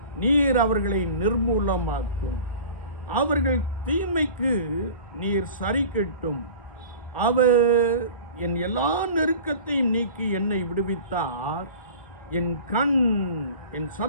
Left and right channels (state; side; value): inverted; both; correlation -0.40